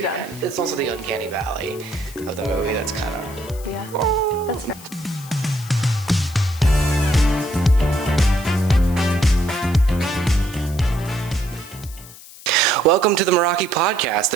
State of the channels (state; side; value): noise; left; hiss, 18 dB below the sound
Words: It's also the uncanny valley of the movie that's kind of... Yeah, that's fair. Welcome to the Meraki podcast,